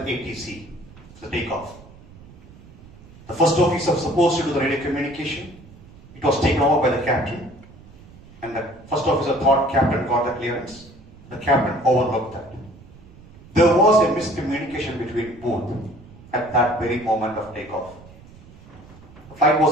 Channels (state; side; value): noise; right; rumble, 21 dB below the sound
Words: for the takeoff. The first officer was supposed to do the radio communication. It was taken over by the captain, and the first officer thought captain got the clearance. The captain overlooked that. There was a miscommunication between both at that very moment of takeoff. The flight